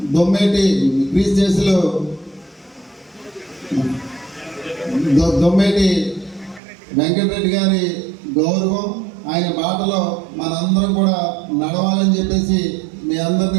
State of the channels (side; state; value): left; drops out; at 6.6 s